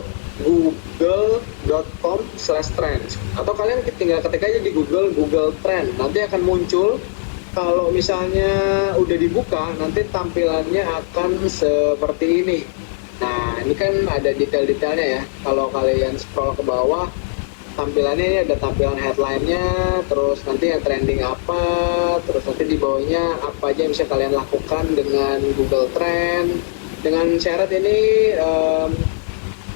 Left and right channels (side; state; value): right; silent; 56 dB below the other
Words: atau kalian tinggal ketik aja di Google Trend, nanti akan muncul. Kalau misalnya udah dibuka, nanti tampilannya akan seperti ini. Nah, ini kan ada detail-detailnya ya. Kalau kalian scroll ke bawah, tampilannya ini ada tampilan headline-nya, terus nanti yang trending apa, terus nanti di bawahnya apa aja yang bisa kalian lakukan dengan Google Trend. Dengan syarat ini